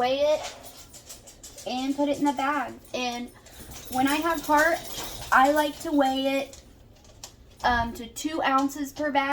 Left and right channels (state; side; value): identical; both; correlation 1.00